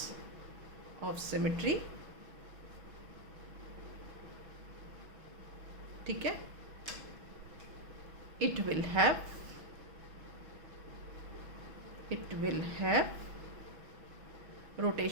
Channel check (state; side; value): late; left; 6.2 ms